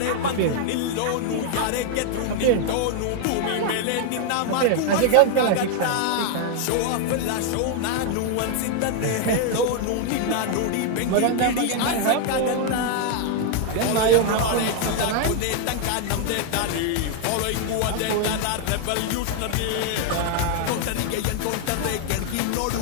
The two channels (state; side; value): different; both; correlation 0.00